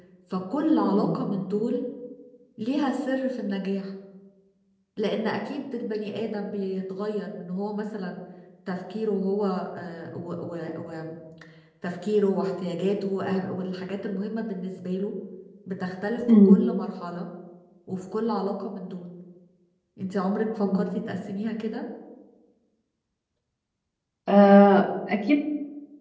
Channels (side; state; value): both; identical; correlation 1.00